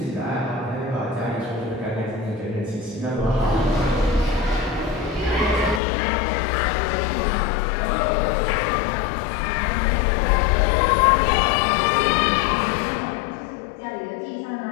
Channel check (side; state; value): right; drops out; at 5.8 s